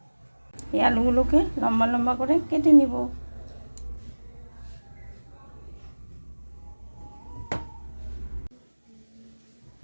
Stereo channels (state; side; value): inverted; both; correlation -1.00